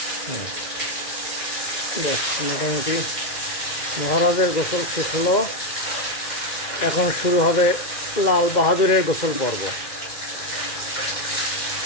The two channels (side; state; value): right; late; 2.1 ms